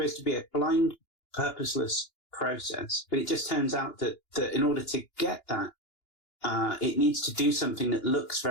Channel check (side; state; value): right; late; 2.9 ms